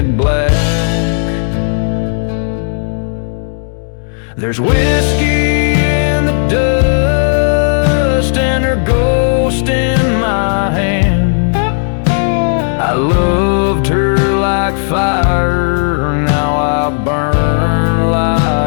black. There's whiskey in the dust and her ghost in my hand. I loved her like fire, now I burn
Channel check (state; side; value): silent; right; digital silence